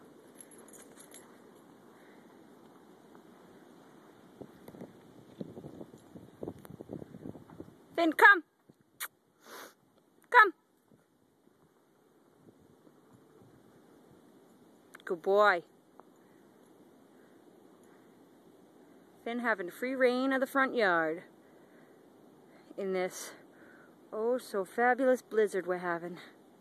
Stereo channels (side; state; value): both; identical; correlation 1.00